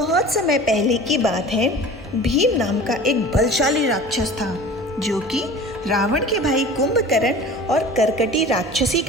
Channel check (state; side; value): normal; both; correlation 0.40